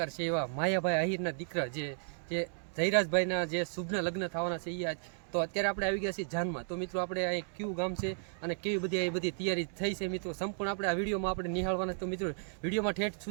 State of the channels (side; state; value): left; silent; 55 dB below the other